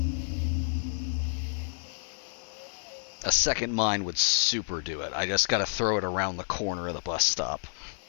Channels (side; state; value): right; silent; 58 dB below the other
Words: A second mine would super do it. I just gotta throw it around the corner of the bus stop.